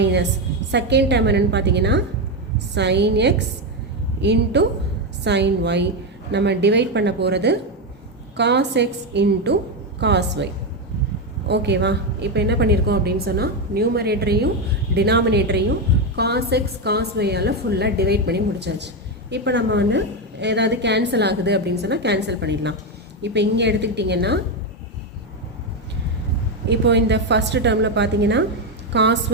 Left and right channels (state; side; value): normal; both; correlation 0.09